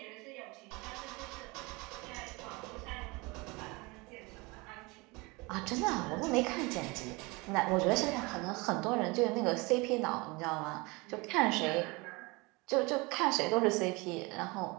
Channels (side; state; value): left; quieter; 25.6 dB